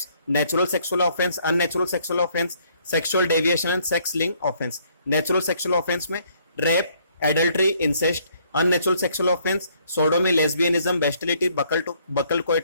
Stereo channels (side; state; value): both; inverted; correlation -0.66